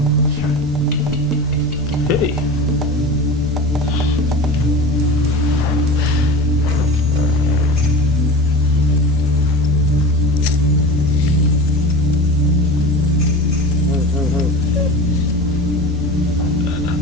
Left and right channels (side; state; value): both; normal; correlation 0.31